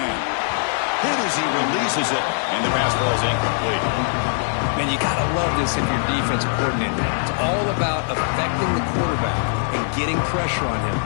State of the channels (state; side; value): silent; right; 65 dB below the other